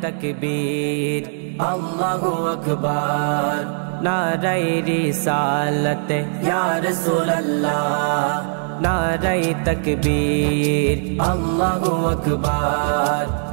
তাকবীর আল্লাহু আকবার, নারায়ে রিসালাত ইয়া রাসূলুল্লাহ। নারায়ে তাকবীর আল্লাহু আকবার,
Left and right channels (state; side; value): silent; left; digital silence